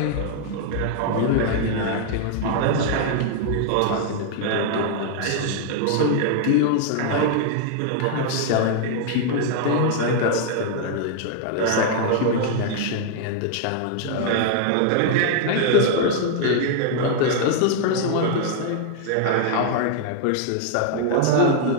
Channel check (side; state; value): both; different; correlation 0.00